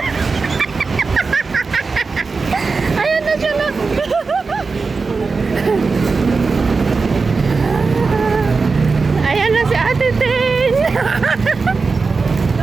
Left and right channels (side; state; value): left; quieter; 4.4 dB